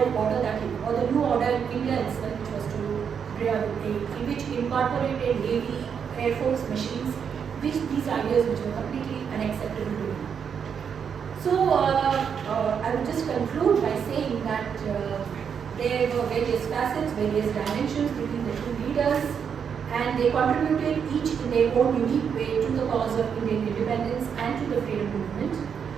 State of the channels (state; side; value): quieter; left; 7.2 dB